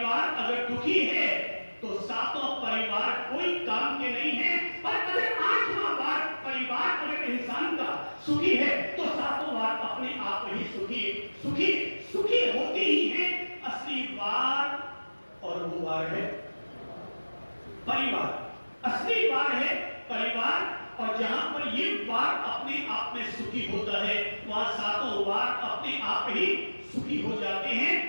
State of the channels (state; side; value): inverted; both; correlation -1.00